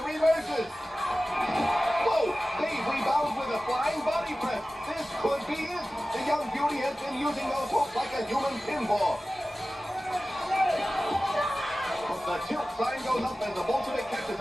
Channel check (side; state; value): both; normal; correlation 0.96